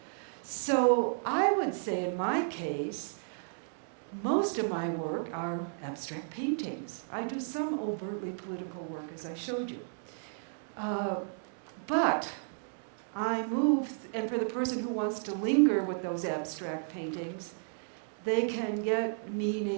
So I would say in my case, most of my work are abstract paintings. I do some overtly political work, as I showed you. But I move, and for the person who wants to linger with those abstract paintings, they can get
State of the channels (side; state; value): left; silent; digital silence